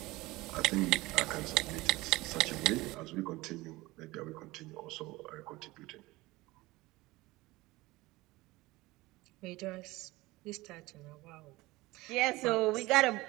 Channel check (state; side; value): quieter; left; 20.3 dB